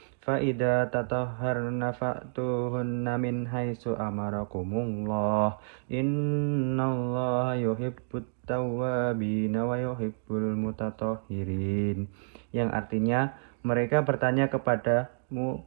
Fa idza tatahharna fa'tuhunna min haitsu amarakumullah. Innallaha yuhibbut tawwabina wa yuhibbul mutatahhirin. Yang artinya, mereka bertanya kepadamu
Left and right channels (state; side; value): silent; left; digital silence